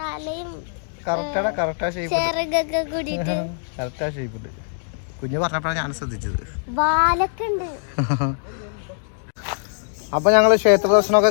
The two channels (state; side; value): silent; right; digital silence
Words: കറക്റ്റാ ചെറുകൊക്കെ കൂടിയിട്ട് കറക്റ്റാ ഷേപ്പുണ്ട്. കുഞ്ഞു പറഞ്ഞപ്പോഴാണ് ഞാൻ ശ്രദ്ധിച്ചത്. വാലൊക്കെ ഉണ്ട്. അപ്പൊ ഞങ്ങള് ക്ഷേത്ര